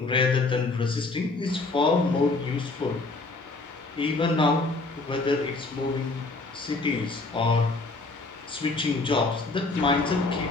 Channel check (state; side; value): quieter; right; 3.4 dB